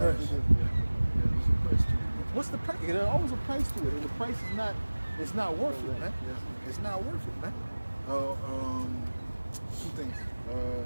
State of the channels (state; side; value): inverted; both; correlation -1.00